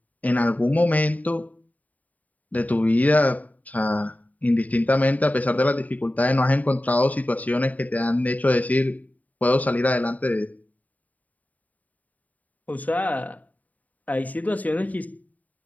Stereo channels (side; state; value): right; late; 0.073 ms